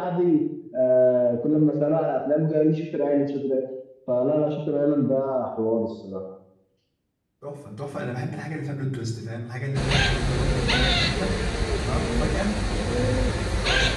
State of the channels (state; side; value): identical; both; correlation 1.00